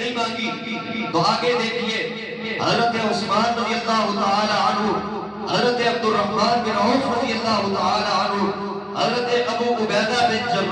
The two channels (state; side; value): identical; both; correlation 1.00